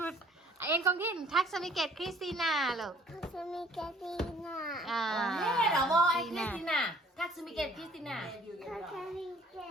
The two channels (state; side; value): normal; both; correlation 0.57